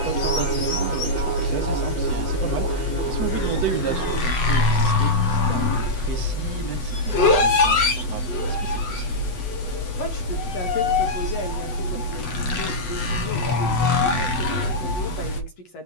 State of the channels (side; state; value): right; late; 8.0 ms